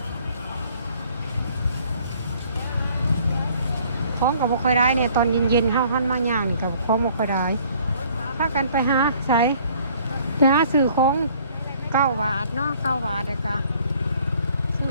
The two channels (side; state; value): both; inverted; correlation -0.58